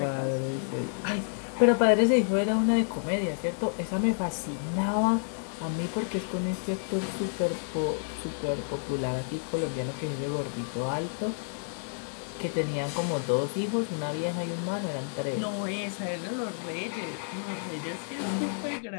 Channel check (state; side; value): silent; right; digital silence